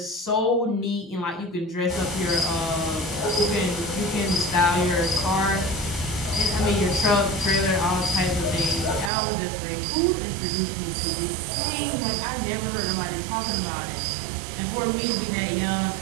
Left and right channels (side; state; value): left; drops out; at 9.1 s